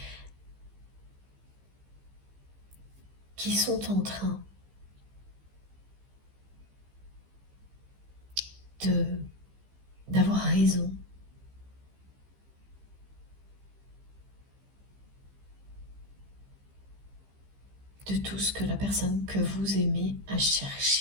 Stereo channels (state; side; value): late; left; 15 ms